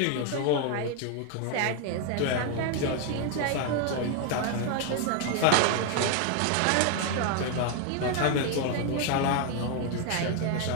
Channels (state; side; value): different; both; correlation 0.00